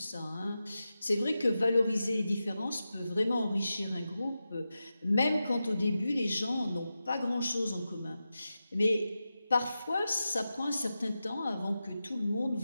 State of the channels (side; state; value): both; inverted; correlation -0.92